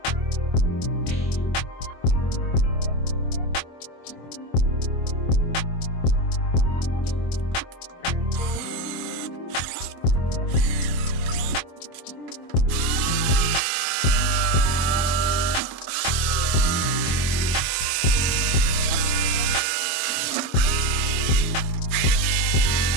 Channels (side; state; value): right; late; 24 ms